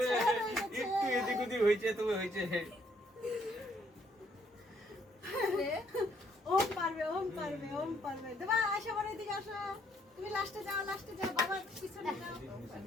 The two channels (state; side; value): normal; both; correlation 0.69